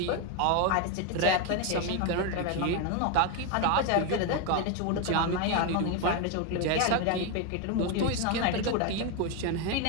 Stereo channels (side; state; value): both; different; correlation 0.02